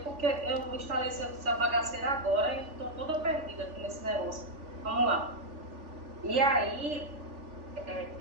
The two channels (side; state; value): left; late; 3.4 ms